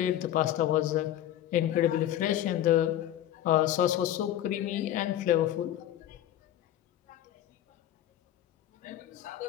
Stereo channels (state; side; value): quieter; right; 12.3 dB